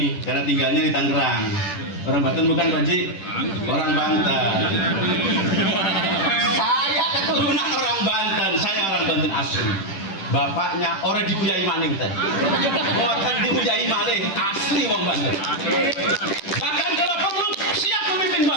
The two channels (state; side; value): late; right; 10 ms